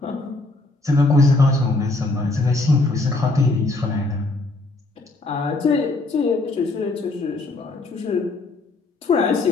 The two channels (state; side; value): quieter; right; 3.1 dB